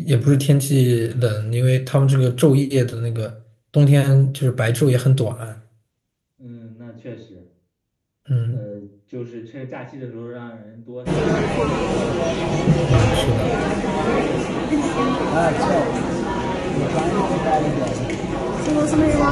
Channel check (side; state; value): both; identical; correlation 1.00